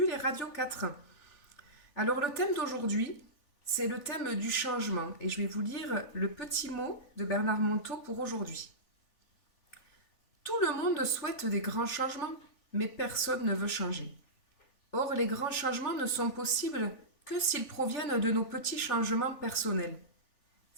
et Radio 4. Alors le thème d'aujourd'hui, c'est le thème du changement et je vais vous lire le petit mot de Bernard Monteau pour aujourd'hui. Tout le monde souhaite des grands changements, mais personne ne veut changer. Or, les grands changements ne sont possibles que s'ils proviennent de nos petits changements personnels.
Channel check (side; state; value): right; late; 3.4 ms